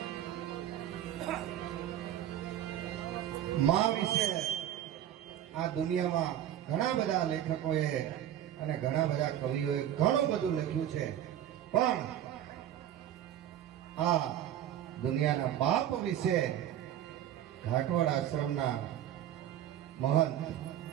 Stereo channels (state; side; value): quieter; left; 11.4 dB